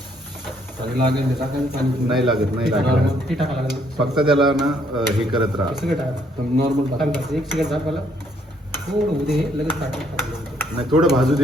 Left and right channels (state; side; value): normal; both; correlation 0.68